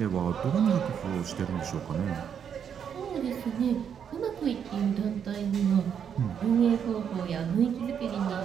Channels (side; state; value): left; quieter; 8.0 dB